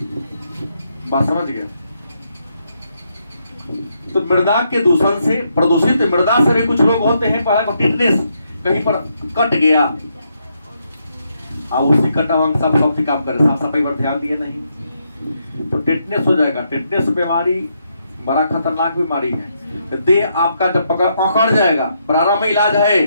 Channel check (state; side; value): inverted; both; correlation -0.78